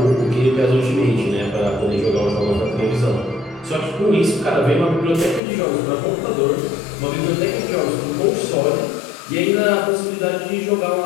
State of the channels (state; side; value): drops out; right; at 5.4 s